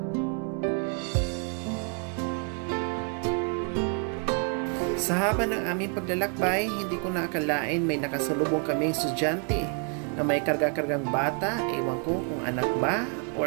Sa haba ng aming paglalakbay, hindi ko naakalain may nakasalubong kaming estudyante na may karga-kargang bata, ewan ko kung anak ba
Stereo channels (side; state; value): left; quieter; 39.5 dB